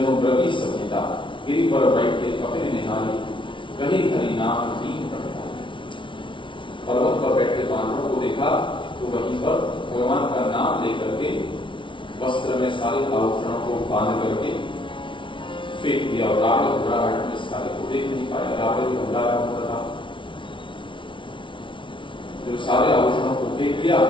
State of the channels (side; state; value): right; late; 0.24 ms